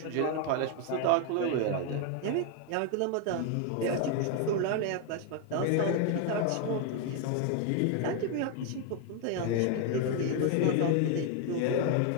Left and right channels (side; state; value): both; different; correlation 0.01